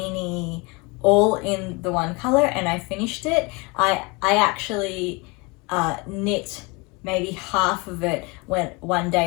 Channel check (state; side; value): quieter; right; 27.7 dB